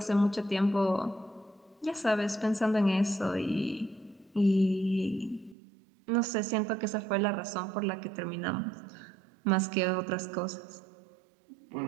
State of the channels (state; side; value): drops out; left; at 5.6 s